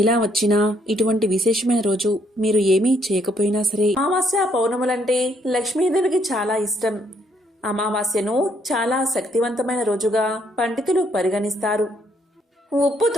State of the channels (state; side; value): normal; both; correlation 0.70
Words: ఇలా వచ్చినా ఇటువంటి విశేషమైన రోజు మీరు ఏమీ చేయకపోయినా సరే, అమావాస్య పౌర్ణములంటే లక్ష్మీదేవికి చాలా ఇష్టం. అమావాస్యను చాలా శక్తివంతమైన రోజుగా పండితులు పరిగణిస్తారు.